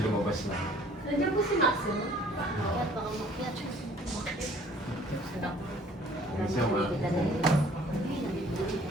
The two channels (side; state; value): both; normal; correlation 0.55